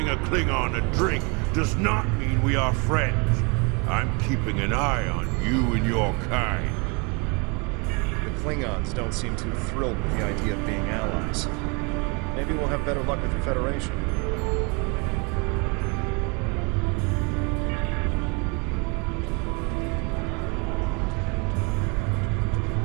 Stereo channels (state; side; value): quieter; left; 31.4 dB